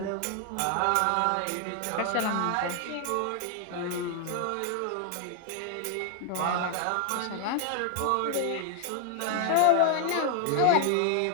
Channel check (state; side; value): different; both; correlation 0.00